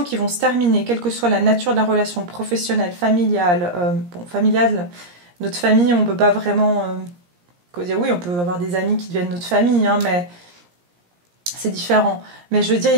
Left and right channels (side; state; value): left; late; 17 ms